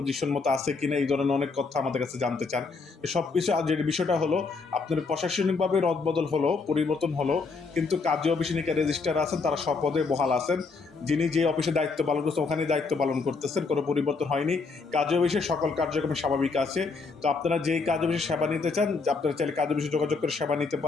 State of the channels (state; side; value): quieter; right; 4.4 dB